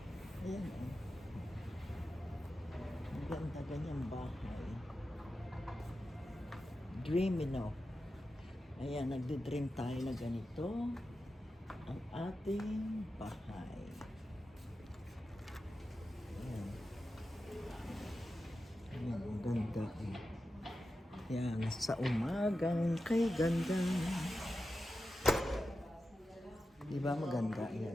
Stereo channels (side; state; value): both; normal; correlation 0.92